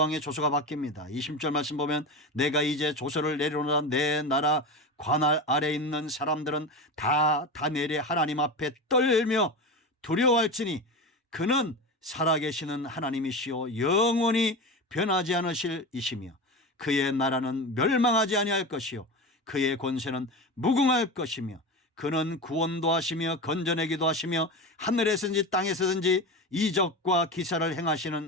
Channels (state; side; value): normal; both; correlation 0.24